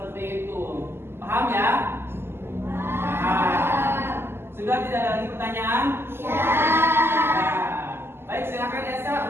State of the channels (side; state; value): left; late; 0.12 ms